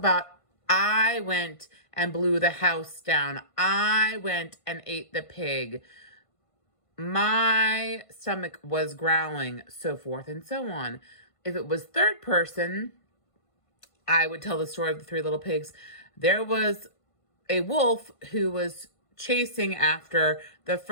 I went and blew the house down. I went and ate the pig. My stomach was growling, so forth and so on. If it was third person, I would tell the story of the Three Little Pigs. There was a wolf who was chasing after the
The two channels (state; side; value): late; right; 1.5 ms